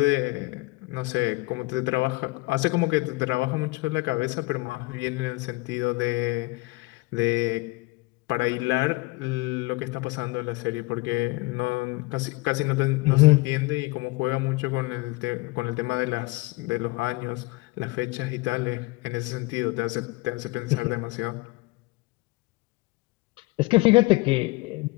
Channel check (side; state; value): right; quieter; 23.7 dB